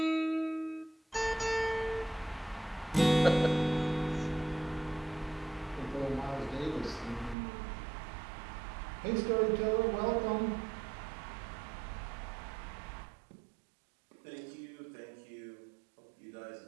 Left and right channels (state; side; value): drops out; left; at 7.4 s